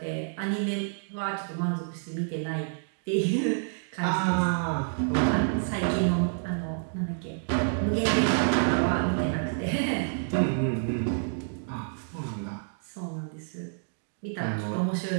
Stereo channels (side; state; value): left; silent; digital silence